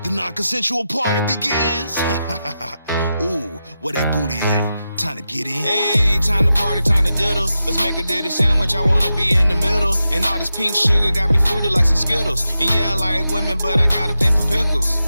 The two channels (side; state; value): both; inverted; correlation -0.90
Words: The non-consensual party begins. Ooh, where that booty at? Time to get in. Hey, time to party, time to diddle. Let's make a ditty sandwich, I wanna be in the middle. And all this pink sugar got me fruity like some Skittles. And yeah, I like women, but I got a thing for